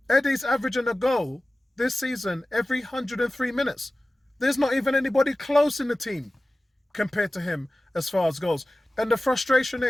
Eddie's averaging a goal this season every 103 minutes. There's not even anybody close in the team compared to him as far as goals. And the frustration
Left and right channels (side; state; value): both; normal; correlation 0.96